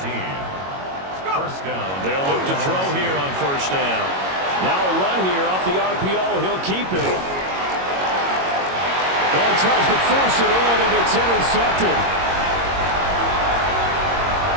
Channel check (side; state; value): left; late; 22 ms